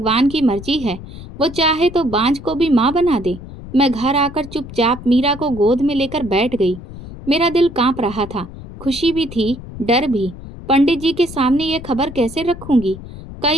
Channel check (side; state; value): left; noise; rumble, 14 dB below the sound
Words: की मर्जी है, वो चाहे तो बांझ को भी माँ बना दे। मैं घर आकर चुपचाप मीरा को गोद में लेकर बैठ गई। मेरा दिल कांप रहा था, खुशी भी थी, डर भी। पंडित जी के सामने ये खबर कैसे रखूंगी?